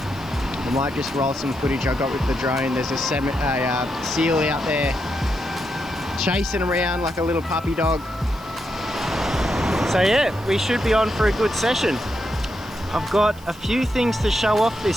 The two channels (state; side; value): noise; right; hiss, 24 dB below the sound